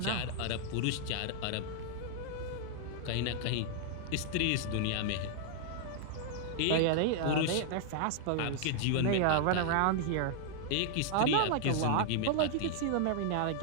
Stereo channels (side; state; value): both; different; correlation -0.01